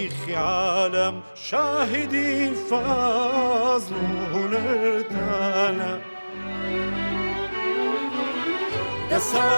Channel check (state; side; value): inverted; both; correlation -1.00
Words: عالم شاهدی فضل و هنرتانا